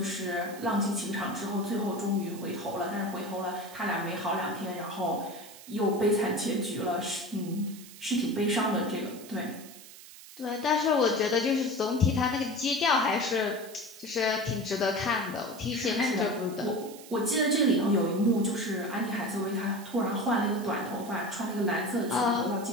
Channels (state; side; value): noise; right; hiss, 17 dB below the sound